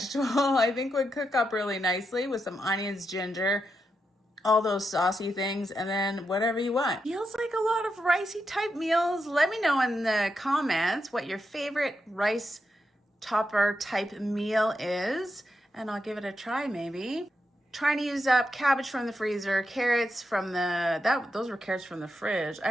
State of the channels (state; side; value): normal; both; correlation 0.85